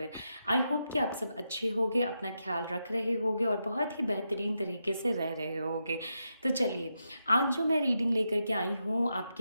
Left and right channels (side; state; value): both; inverted; correlation -0.85